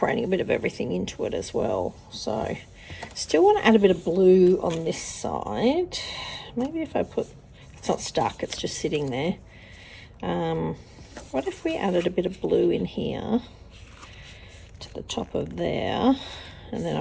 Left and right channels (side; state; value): both; identical; correlation 1.00